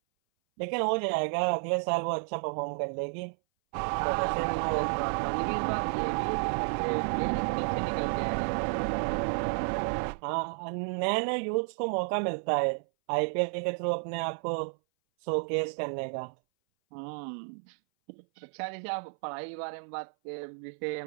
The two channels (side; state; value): left; silent; 57 dB below the other